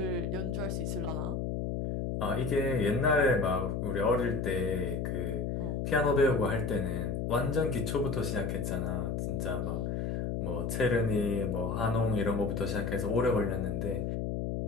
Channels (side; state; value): left; noise; hum, 1 dB below the sound